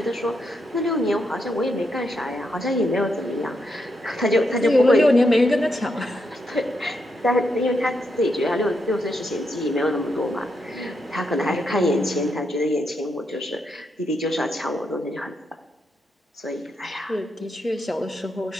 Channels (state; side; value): normal; both; correlation 0.81